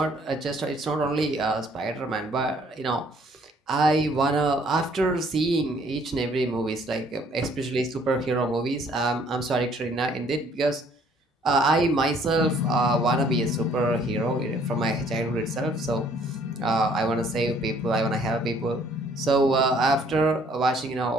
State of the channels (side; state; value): both; normal; correlation 0.61